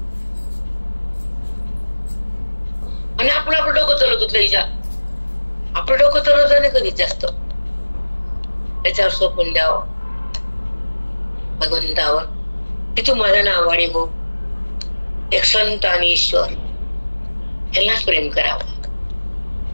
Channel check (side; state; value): both; inverted; correlation -1.00